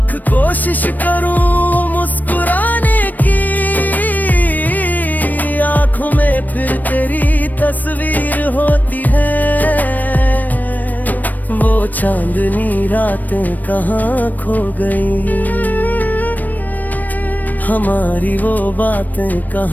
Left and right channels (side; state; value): right; late; 0.085 ms